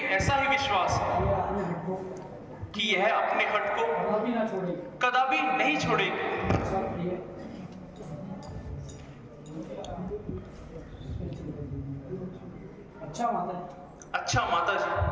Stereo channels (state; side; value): identical; both; correlation 1.00